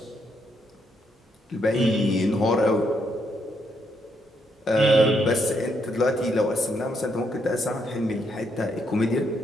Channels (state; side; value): normal; both; correlation 0.76